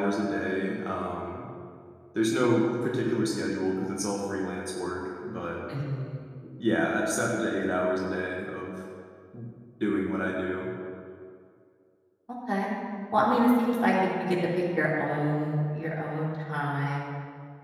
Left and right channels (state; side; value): identical; both; correlation 1.00